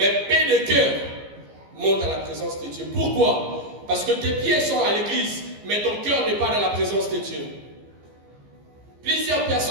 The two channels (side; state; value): left; late; 15 ms